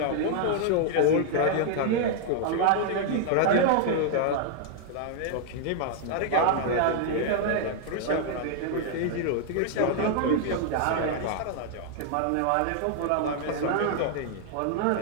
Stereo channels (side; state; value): both; different; correlation 0.00